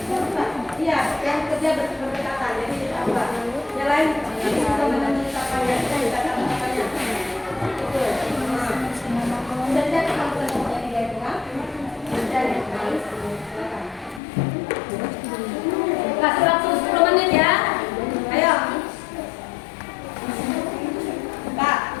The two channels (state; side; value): drops out; right; at 14.2 s